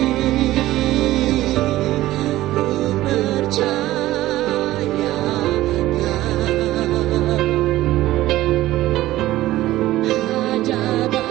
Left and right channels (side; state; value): left; quieter; 15.9 dB